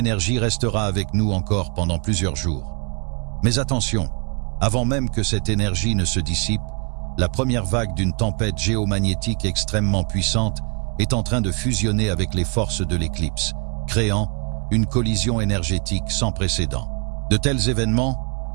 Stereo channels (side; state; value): left; quieter; 35.4 dB